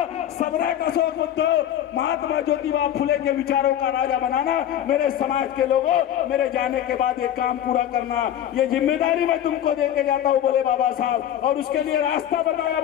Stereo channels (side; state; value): right; quieter; 10.8 dB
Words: सबने कसो बुद्ध, महात्मा ज्योतिबा फुले के विचारों का राजा बनाना। मेरे समाज के लोगों, मेरे जाने के बाद ये काम पूरा करना, ये जिम्मेदारी मैं तुमको देके जाता हूँ, बोले बाबा साहब। और उसके लिए रास्ता बताया